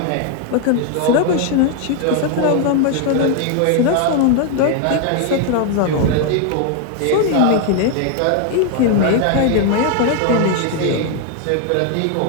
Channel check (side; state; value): both; different; correlation 0.00